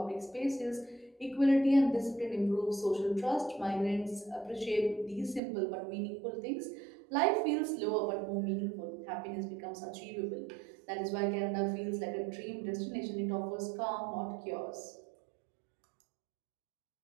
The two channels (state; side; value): drops out; left; at 5.4 s